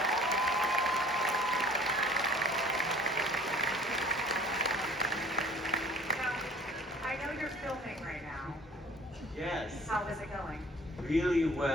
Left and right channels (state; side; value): normal; both; correlation 0.52